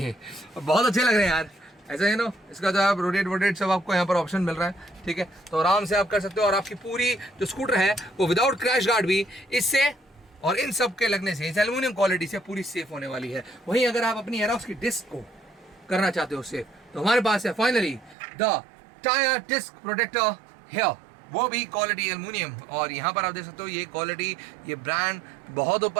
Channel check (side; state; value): left; drops out; at 18.2 s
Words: बहुत अच्छे लग रहे हैं यार, ऐसा है नो। इसका जो आप रोटेट सब आपको यहाँ पर ऑप्शन मिल रहा है, ठीक है, तो आराम से आप कर सकते हो। और आपकी पूरी जो स्कूटर है वो विदाउट क्रैश गार्ड भी इससे और इन सब के लगने से, इस एल्युमिनियम क्वालिटी से पूरी सेफ होने वाली है। वहीं अगर आप अपनी एरोक्स की डिस्क को करना चाहते हो सेफ, तो हमारे पास है finally the tyre disc protector here, वो भी क्वालिटी एल्युमिनियम। और यहाँ पर आप देख सकते हो ये क्वालिटी, ये ब्रांड बहुत